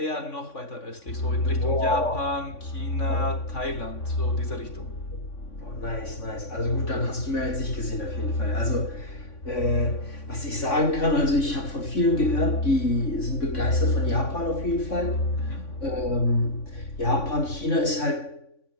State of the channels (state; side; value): late; right; 3.6 ms